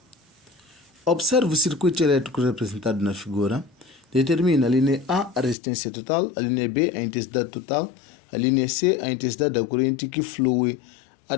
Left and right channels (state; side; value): drops out; right; at 5.6 s